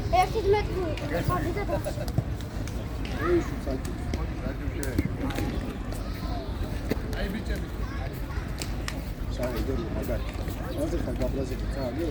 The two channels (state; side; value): identical; both; correlation 1.00